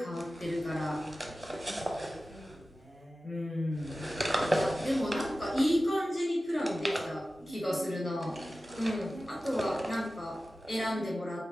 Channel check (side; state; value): both; normal; correlation 0.95